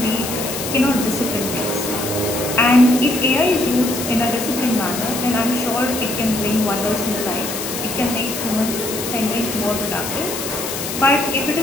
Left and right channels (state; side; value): noise; left; hiss, 6 dB below the sound